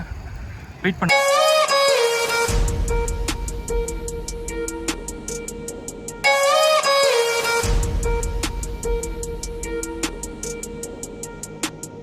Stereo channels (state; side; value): identical; both; correlation 1.00